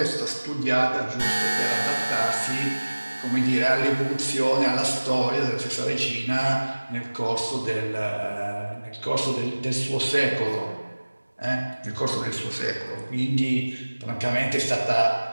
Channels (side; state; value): both; inverted; correlation -1.00